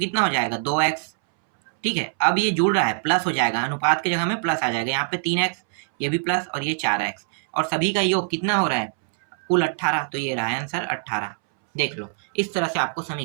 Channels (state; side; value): silent; left; 63 dB below the other